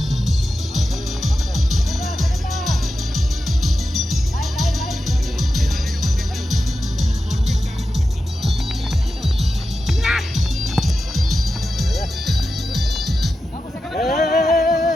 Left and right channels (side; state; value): both; normal; correlation 0.91